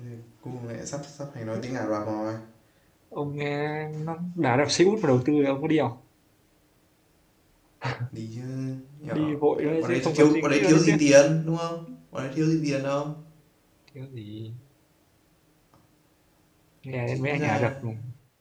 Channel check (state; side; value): identical; both; correlation 1.00